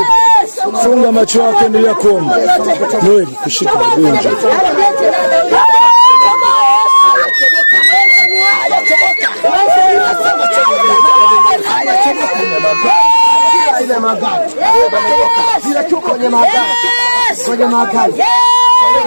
Funga macho yako, endelea kuomba. Mwili kushika gunja.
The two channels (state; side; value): inverted; both; correlation -1.00